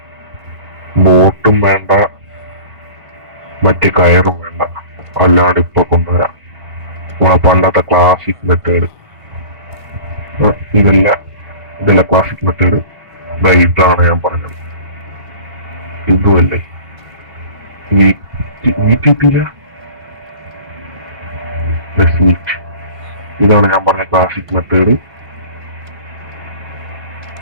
ബോട്ടും വേണ്ട, മറ്റേ കയറും വേണ്ട, അല്ലാണ്ട് ഇപ്പൊ കൊണ്ടുവരാം. നമ്മളെ പണ്ടത്തെ ക്ലാസിക് മെത്തേഡ്. ഇതല്ല ക്ലാസിക് മെത്തേഡ്. ഇതാണ് ഞാൻ പറഞ്ഞത്. ഇതുമല്ലേ വീട്ടില്ല. ഇതാണ് ഞാൻ പറഞ്ഞ ക്ലാസിക് മെത്തേഡ്.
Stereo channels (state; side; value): late; left; 1.5 ms